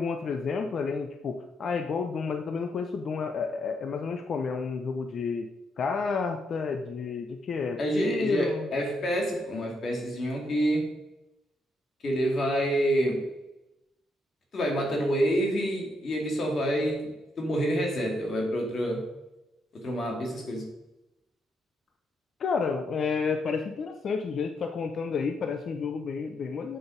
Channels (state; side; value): normal; both; correlation 0.78